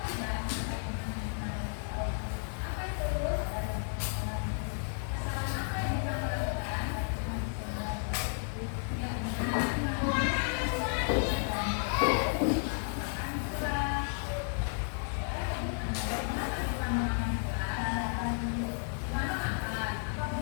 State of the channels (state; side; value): silent; right; 56 dB below the other